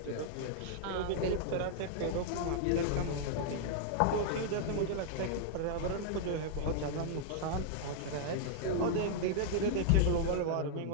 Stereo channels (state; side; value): different; both; correlation -0.01